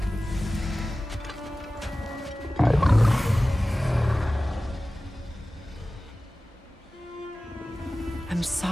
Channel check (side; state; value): both; normal; correlation 0.96